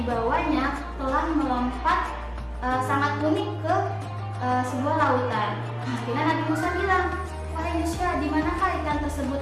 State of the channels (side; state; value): both; identical; correlation 1.00